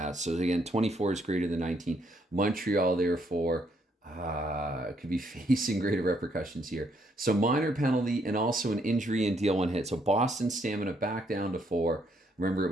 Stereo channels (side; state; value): both; normal; correlation 0.72